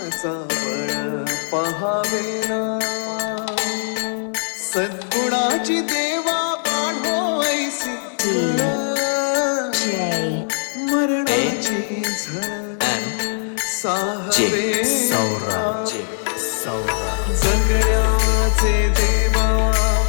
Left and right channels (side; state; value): right; silent; digital silence